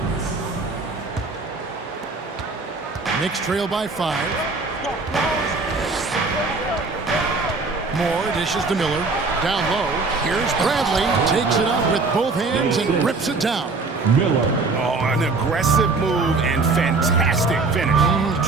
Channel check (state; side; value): quieter; left; 3.9 dB